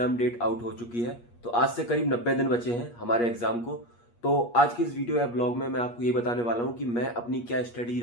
डेट आउट हो चुकी है। तो आज से करीब 90 दिन बचे हैं हमारे एग्जाम को। तो आज की इस वीडियो या ब्लॉग में मैं आपको ये बताने वाला हूँ कि मैं अपनी क्या स्टडी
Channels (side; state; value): right; late; 8.5 ms